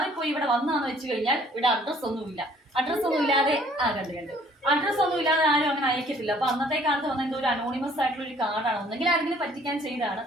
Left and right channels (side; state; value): both; normal; correlation 0.58